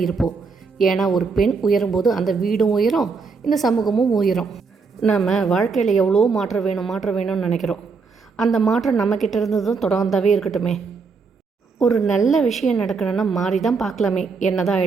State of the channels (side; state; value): left; quieter; 4.8 dB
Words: இருப்போம். ஏன்னா ஒரு பெண் உயரும்போது அந்த வீடும் உயரும், இந்த சமூகமும் உயரும். நம்ம வாழ்க்கையில் எவ்வளோ மாற்றம் வேணும்னு நினைக்கிறோம். அந்த மாற்றம் நம்மக்கிட்ட இருந்ததும் தொடர்ந்தாவே இருக்கட்டுமே. ஒரு நல்ல விஷயம் நடக்கணும்னா மாறி தான் பார்க்கலாமே, என்ன தான்